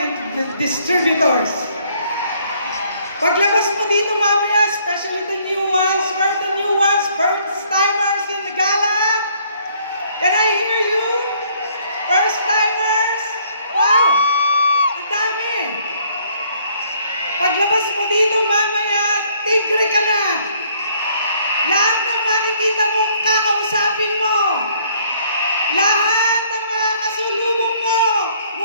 to the distributors. Paglabas mo dito mamaya, especially the new ones, first timers in the gala. Can I hear you? First timers? Wow! Ang dami! Paglabas mo dito mamaya, tigre ka na! Lahat ng makikita mo, kakausapin mo! Lahat ng mga kasulubong mo,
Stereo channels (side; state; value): both; inverted; correlation -0.63